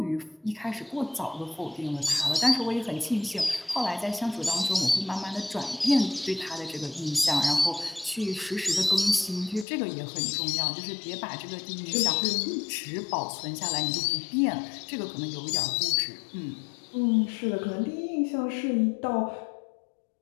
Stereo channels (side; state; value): right; drops out; at 9.7 s